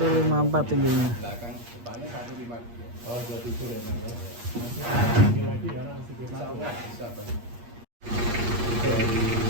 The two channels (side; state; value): left; late; 8.4 ms